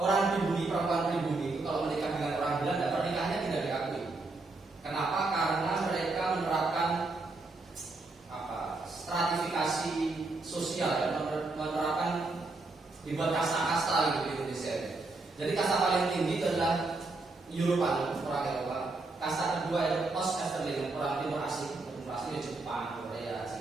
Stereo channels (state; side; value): quieter; left; 3.4 dB